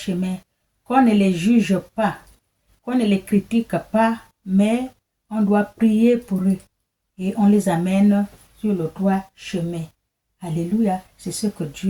qu'on ne les juge pas, qu'on ne les critique pas, mais on doit prier pour eux et on les amène sur le droit chemin. Alléluia, c'est ce que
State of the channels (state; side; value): identical; both; correlation 1.00